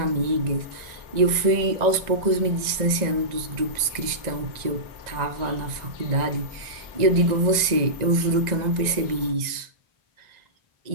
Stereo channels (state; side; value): late; left; 1.9 ms